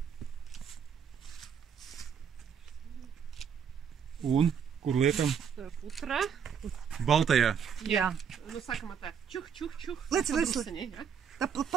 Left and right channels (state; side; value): quieter; left; 7.4 dB